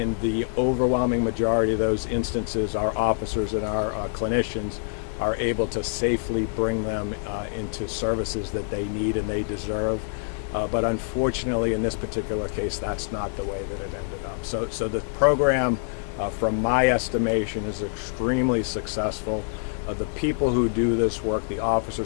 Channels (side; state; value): right; silent; digital silence